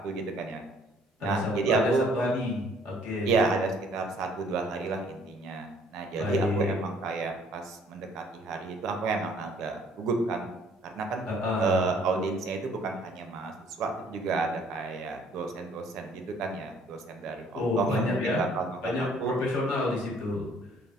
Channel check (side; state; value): both; normal; correlation 0.60